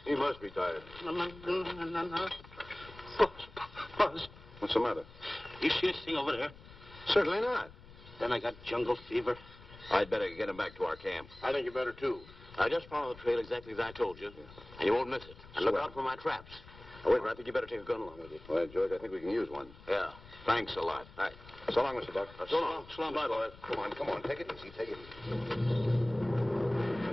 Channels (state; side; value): noise; left; rumble, 19 dB below the sound